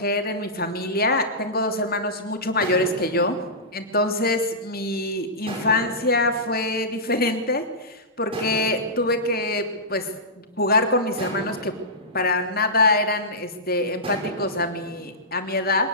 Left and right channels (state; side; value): normal; both; correlation -0.15